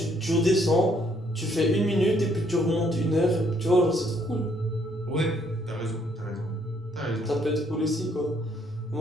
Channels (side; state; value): both; normal; correlation 0.68